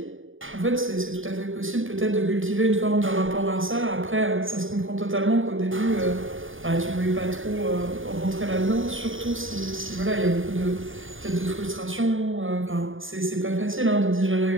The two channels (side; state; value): left; late; 0.58 ms